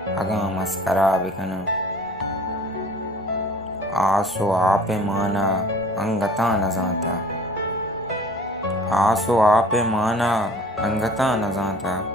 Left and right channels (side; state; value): both; normal; correlation 0.49